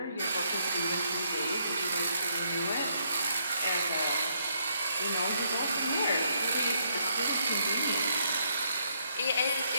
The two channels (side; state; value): both; inverted; correlation -0.73